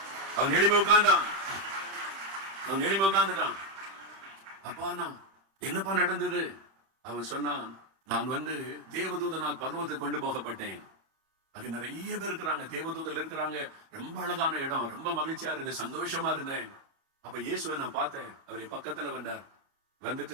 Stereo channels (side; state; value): left; late; 31 ms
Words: அவன் எளிமை உட்கார்ந்துட்டான். அப்பா நான் என்னப்பா நடந்தது? அவன் சொன்னான், நான் தேவதூதனால் பர்வத்துக்கு கொண்டு போகப்பட்டேன். அது நிறைய பேர் இருக்கிறாங்க, தேவதூதல் இருக்கிறாங்க, ரொம்ப அழகான இடம், ரொம்ப மகிழ்ச்சியா இருந்தேன், சந்தோஷமா இருந்தேன். அப்ப இயேசுவை நான் பார்த்தேன். அவர் பக்கத்துல வந்தார்.